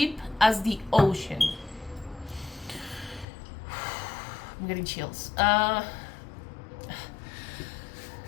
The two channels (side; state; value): right; drops out; at 3.2 s